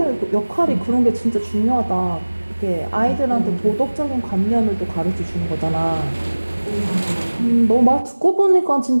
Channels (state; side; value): inverted; both; correlation -1.00